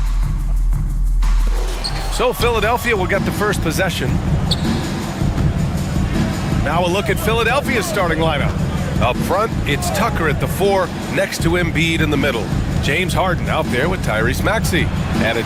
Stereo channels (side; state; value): both; identical; correlation 1.00